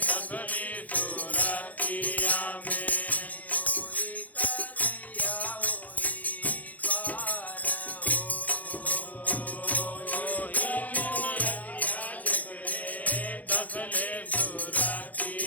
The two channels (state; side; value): late; right; 0.078 ms